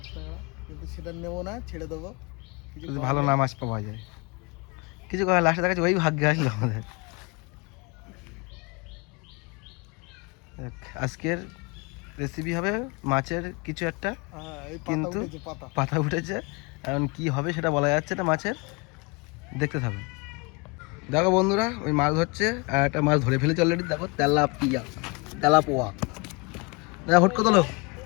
কিন্তু সেটা নেবো না, ছেড়ে দেবো। কিছু ভালো না মাছ পাওয়া যায়, কিছু করার লাস্টে দেখাচ্ছে ওই ভাগ্যে আসলো আমাদের। আজকের রেসিপি হবে মাছের কিছু একটা, কিন্তু পাতা উঠেছে, এখন কি হবে সেটা বলা যাচ্ছে না মাছের, দেখতে থাকো। দেখো বন্ধুরা, ওই মাছ ধরছে আর একটা মাছ ধরে ফেলেছে অলরেডি। দেখো তেলাপোয়া, দেখো হুটকো তোলো,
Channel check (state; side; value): quieter; right; 29.0 dB